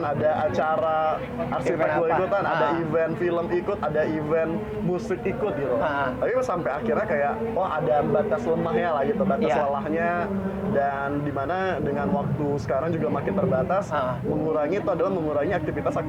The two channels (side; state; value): both; identical; correlation 1.00